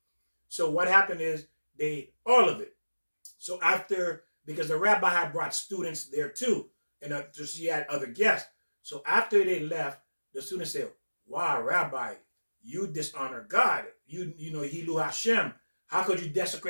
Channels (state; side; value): inverted; both; correlation -1.00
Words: So what happened is they ate all of it. So because the rabbi had brought students there too, and she had other guests. So after they left, the students said, "Wow, Rabbi, you dishonor God. You know, Hilu Hashem. How could you